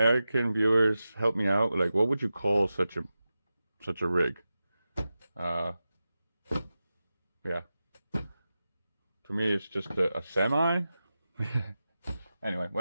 viewers help me out? Like, what would you call such a rig? Uh, yeah, to me it's just a semi. Anyway,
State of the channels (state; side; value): inverted; both; correlation -0.93